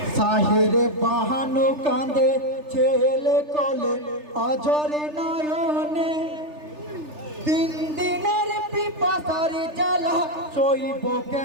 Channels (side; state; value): left; late; 3.3 ms